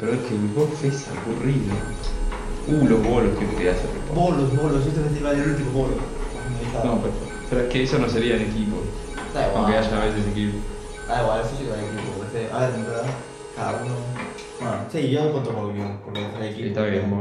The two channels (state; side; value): identical; both; correlation 1.00